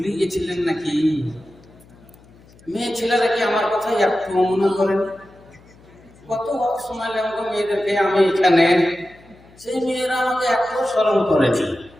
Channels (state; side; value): noise; left; hum, 26 dB below the sound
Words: গেছিলেন নাকি? মেয়ে ছেলেরা কি আমার কথা একটু মনে করেন? কত সময় লাগলো মেয়েদেরকে আমি এখানে, সেই মেয়েরা আমাকে এত স্মরণ করেছে।